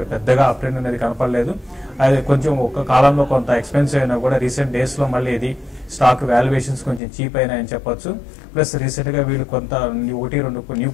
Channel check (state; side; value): drops out; right; at 7.0 s